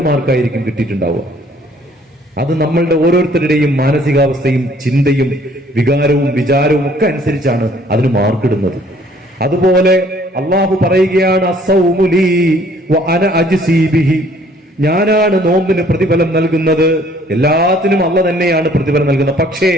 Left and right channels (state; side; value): normal; both; correlation 0.59